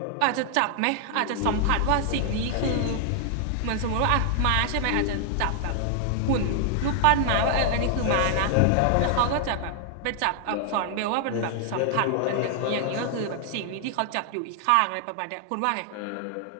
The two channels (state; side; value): different; both; correlation 0.00